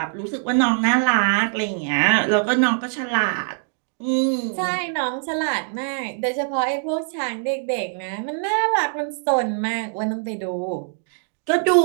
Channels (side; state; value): left; silent; digital silence